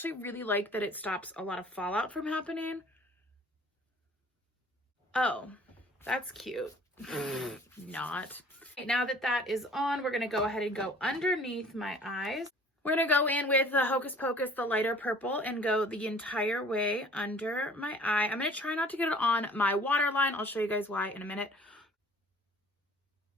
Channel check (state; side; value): normal; both; correlation 0.51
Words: really like that it stops a lot of fallout from happening. Oh, that's cute. Not. Okay, now that that is on, we're gonna go ahead and go underneath my eyes. We're gonna go in with the Hocus Pocus, the lighter purple, and go the entire way under my eye. I'm gonna try not to get it on my waterline. I'll show you guys why in a minute.